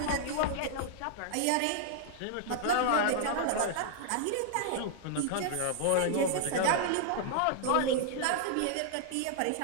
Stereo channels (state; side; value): different; both; correlation -0.01